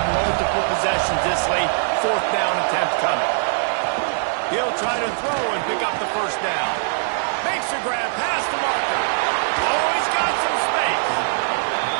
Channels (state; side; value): silent; left; digital silence